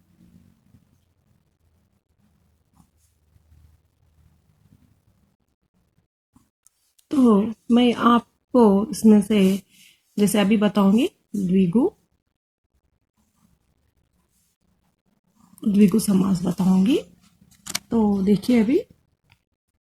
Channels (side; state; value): both; identical; correlation 1.00